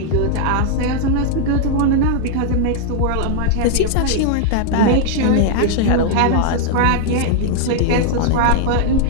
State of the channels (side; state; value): both; different; correlation -0.01